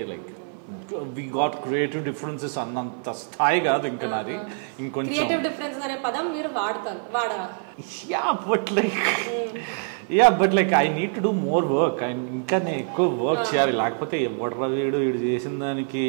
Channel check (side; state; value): left; silent; 56 dB below the other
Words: Like we got creative differences అన్నంత స్థాయి కాదు ఇంకా నాది. ఇంకొంచెం క్రియేటివ్ డిఫరెన్సెస్ అనే పదం మీరు వాడరా? But like I need to do more work. ఇంకా నేను ఎక్కువ వర్క్ చేయాలి, లేకపోతే ఎవడరా వీడు చేసిన దానికి